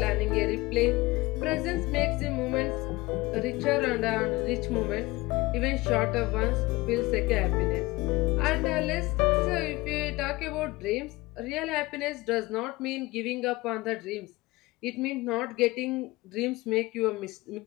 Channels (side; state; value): right; quieter; 21.2 dB